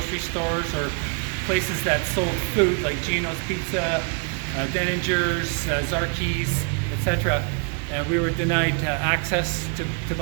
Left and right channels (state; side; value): quieter; left; 38.2 dB